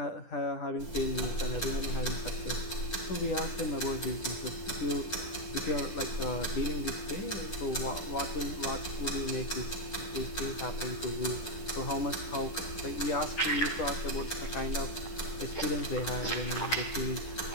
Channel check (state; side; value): late; right; 9.9 ms